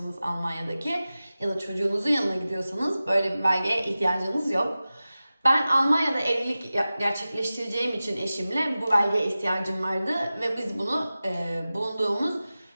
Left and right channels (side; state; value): both; inverted; correlation -0.96